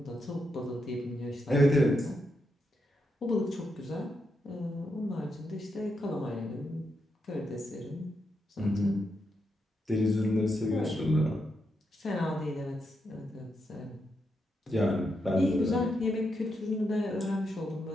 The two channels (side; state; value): both; normal; correlation 0.83